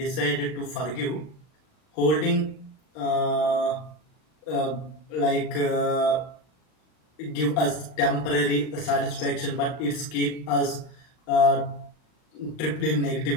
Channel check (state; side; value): late; right; 39 ms